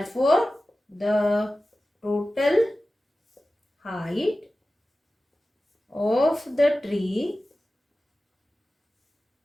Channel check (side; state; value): both; normal; correlation 0.95